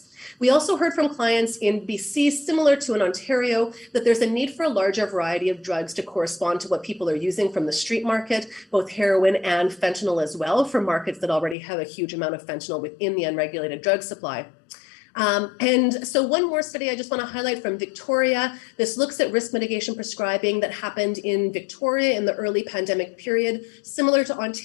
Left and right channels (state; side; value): drops out; right; at 11.6 s